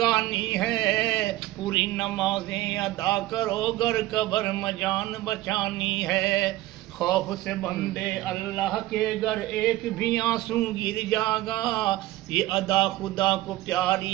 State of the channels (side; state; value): left; quieter; 16.7 dB